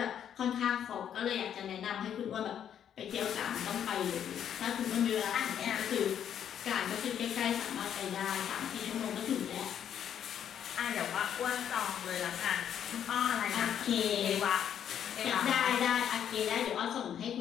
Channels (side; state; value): right; quieter; 9.3 dB